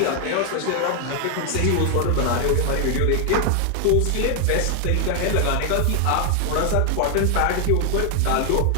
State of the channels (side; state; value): both; different; correlation 0.00